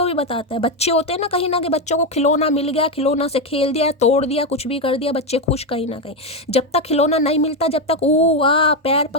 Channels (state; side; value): normal; both; correlation 0.08